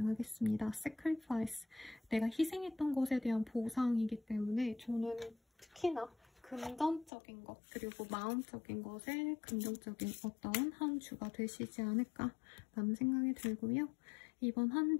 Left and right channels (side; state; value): right; drops out; at 7.1 s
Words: Sacrifice, 내가 희생했던 것에 대한 보상이기 때문에 저는 특히나 금전적인 것, 그리고 마음적인 것에 긍정적인 어떤 한 주가 되시지 않을까라는 생각이 들고요. 이번 한